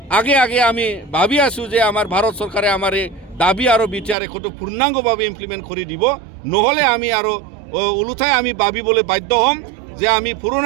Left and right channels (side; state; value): left; drops out; at 4.2 s